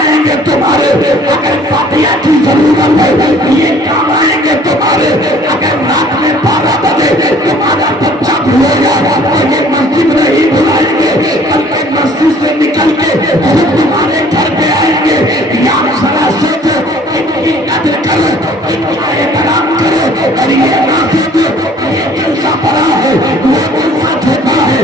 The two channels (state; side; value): normal; both; correlation 0.55